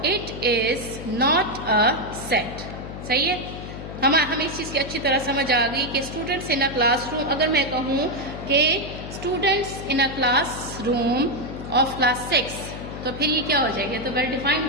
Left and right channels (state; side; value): noise; left; hum, 10 dB below the sound